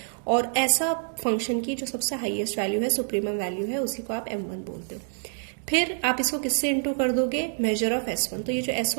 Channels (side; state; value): left; silent; 60 dB below the other